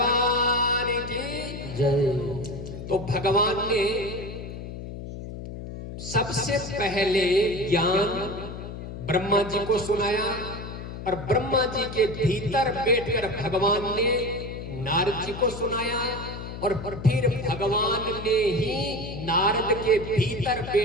की जय। तो भगवान ने सबसे पहले ज्ञान ब्रह्मा जी को सुनाया और ब्रह्मा जी के भीतर बैठकर भगवान ने नारद जी को सुनाया और फिर भगवान ने ही नारद के भीतर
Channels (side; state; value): left; noise; hum, 9 dB below the sound